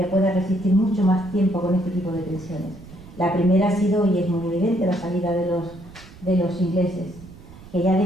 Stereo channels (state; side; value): noise; right; rumble, 19 dB below the sound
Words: pueda resistir mucho más tiempo con este tipo de tensiones. La primera ha sido, y es muy evidente, la salida de los ingleses, que ya